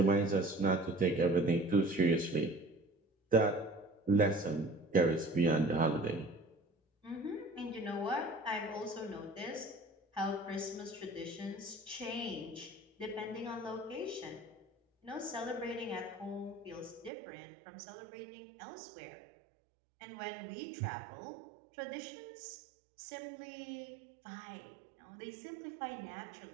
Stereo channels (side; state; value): left; drops out; at 17.1 s